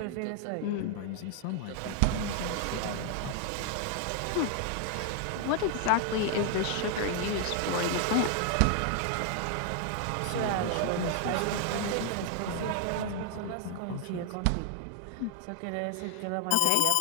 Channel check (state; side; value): different; both; correlation 0.00